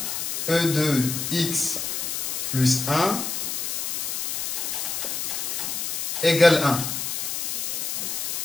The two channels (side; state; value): left; noise; hiss, 2 dB below the sound